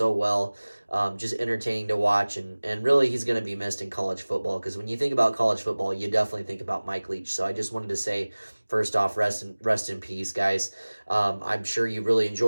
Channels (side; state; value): both; inverted; correlation -1.00